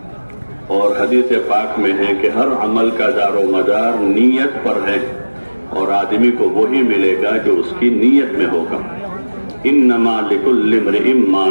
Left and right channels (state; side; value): inverted; both; correlation -1.00